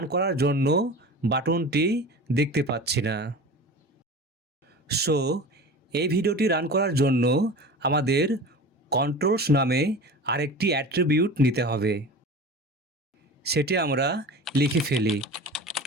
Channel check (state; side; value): normal; both; correlation 0.35